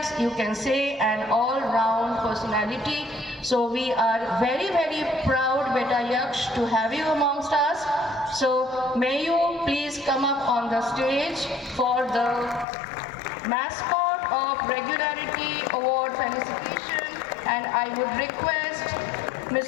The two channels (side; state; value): right; drops out; at 12.7 s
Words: you can say an all-round personality. So we are very, very proud, Beta Yaksh, to have you amongst us. So may you please come up on the stage for the mascot of regularity award felicitation, and I would request